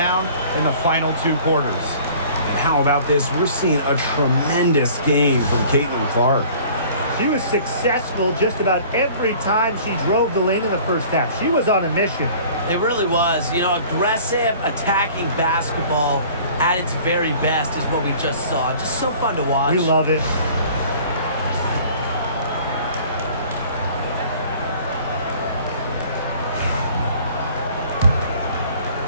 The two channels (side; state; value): both; inverted; correlation -0.49